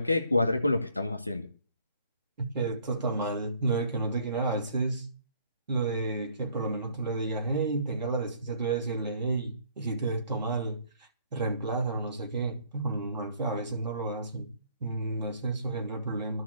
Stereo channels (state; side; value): inverted; both; correlation -0.60